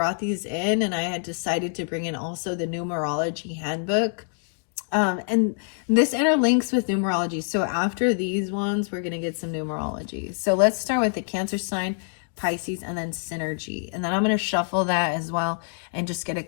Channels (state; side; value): silent; right; digital silence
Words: these in, and I had decided to bring in also the numerology handbook. And this interlinks with numerology. So after these ones, we're going to get some numerology. So let's start with the Cancer sign, Pisces, and then synergy. And then I'm going to shuffle that as well and just get a